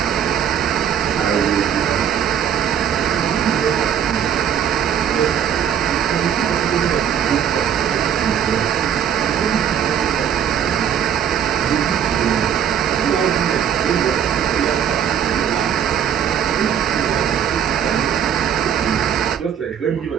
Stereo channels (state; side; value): quieter; left; 8.8 dB